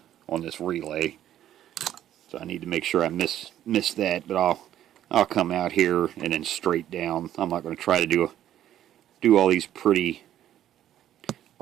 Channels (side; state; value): left; quieter; 11.6 dB